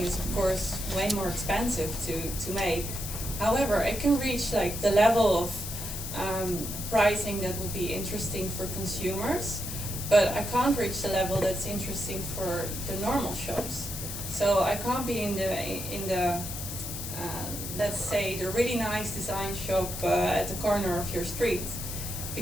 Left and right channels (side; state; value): left; noise; hiss, 7 dB below the sound